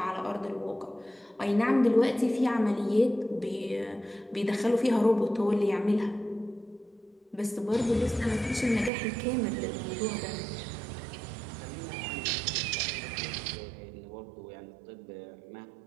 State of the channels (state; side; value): drops out; left; at 8.9 s